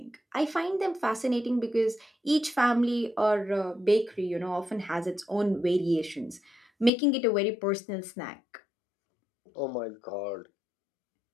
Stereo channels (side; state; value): right; drops out; at 6.9 s